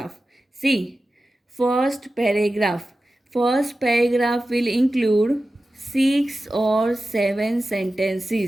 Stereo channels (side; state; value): both; normal; correlation 0.94